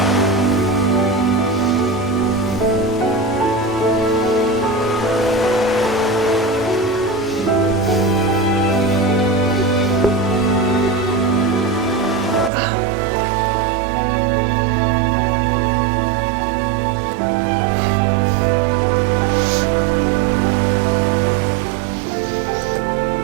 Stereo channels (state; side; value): drops out; left; at 12.5 s